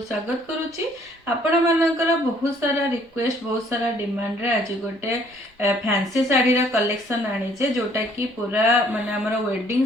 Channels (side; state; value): both; normal; correlation 0.61